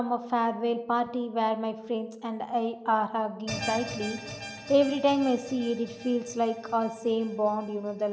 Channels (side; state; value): both; identical; correlation 1.00